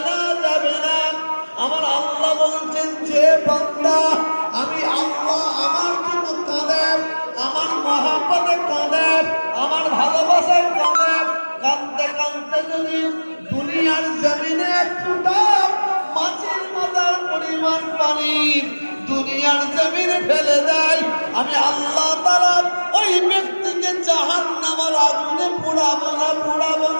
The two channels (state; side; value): inverted; both; correlation -1.00